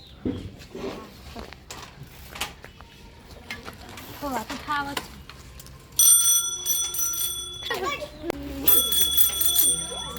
હો આ તો ફાવત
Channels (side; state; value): both; identical; correlation 1.00